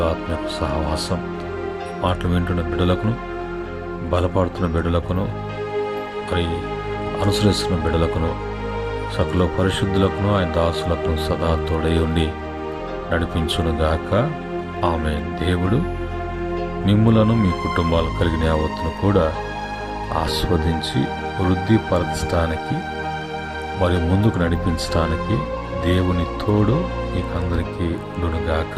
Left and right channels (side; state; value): both; identical; correlation 1.00